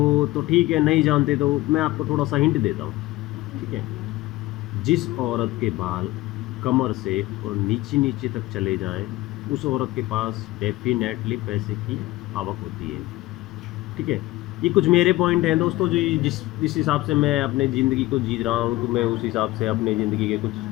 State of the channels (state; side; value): quieter; right; 18.3 dB